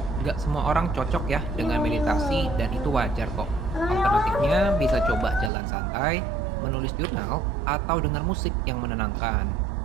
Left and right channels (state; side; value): drops out; left; at 5.5 s